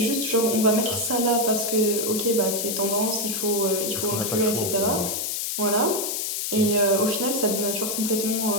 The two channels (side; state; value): left; noise; hiss, 2 dB below the sound